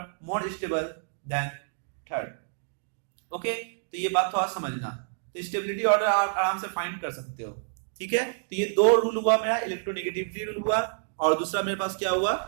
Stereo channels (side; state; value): left; silent; digital silence